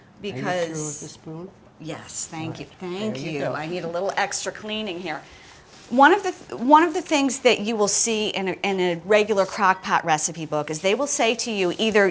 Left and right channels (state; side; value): identical; both; correlation 1.00